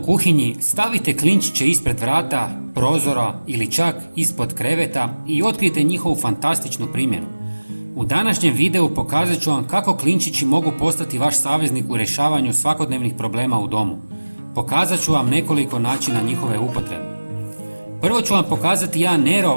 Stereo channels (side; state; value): both; inverted; correlation -1.00